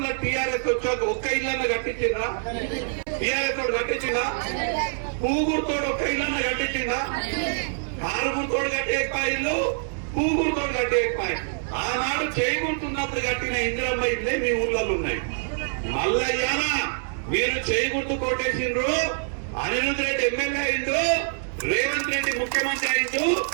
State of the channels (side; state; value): left; silent; 60 dB below the other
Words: టీఆర్ఎస్ వచ్చాక ఒక్క ఇల్లన్న కట్టించిందా? టీఆర్ఎస్ తోడు కట్టించిందా? పూగురుతోడు ఒక్క ఇల్లన్న కట్టించిందా? కారుగురుతోడు కట్టే ఇల్లు పూగురుతో కట్టేపాయి. ఆనాడు చేయగుర్తున్నప్పుడు కట్టిన ఇందిరమ్మ ఇల్లే మీ ఊర్లలో ఉన్నాయి. మల్లయ్యానా మీరు చేయగుర్తు కొట్టేసిండ్రు, అనిరుద్ రెడ్డి ఎమ్మెల్యే అయిండు, రేవంత్ రెడ్డి ముఖ్యమంత్రి అయిండు.